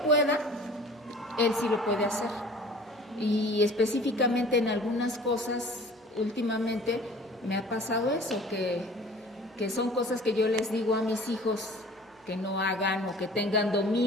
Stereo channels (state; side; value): normal; both; correlation 0.46